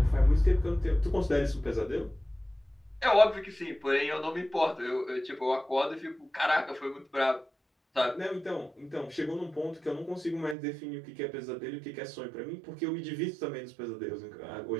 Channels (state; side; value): drops out; left; at 10.6 s